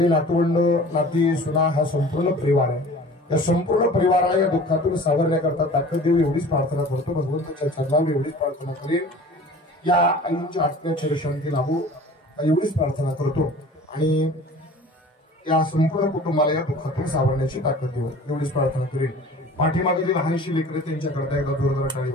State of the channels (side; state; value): both; normal; correlation 0.44